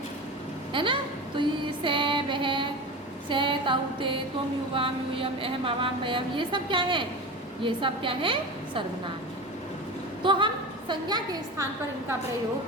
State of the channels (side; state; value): both; normal; correlation 0.29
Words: ना। तो ये से, वह, से, ताउते, तुम, युवाम, यूयम, अहम, आवाम, वयम, ये सब क्या है? ये सब क्या है? सर्वनाम। तो हम संज्ञा के स्थान पर इनका